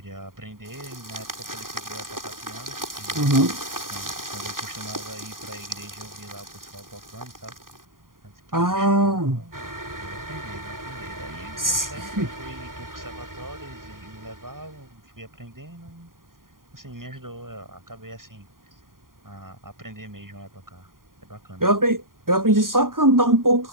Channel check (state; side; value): late; left; 0.91 ms